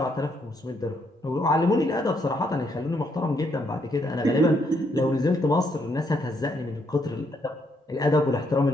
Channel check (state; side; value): normal; both; correlation 0.74